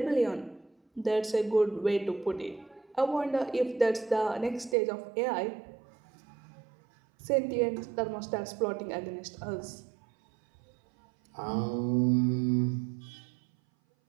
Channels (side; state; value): left; drops out; at 4.8 s